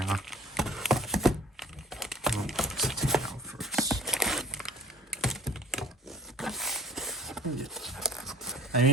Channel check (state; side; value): normal; both; correlation 0.50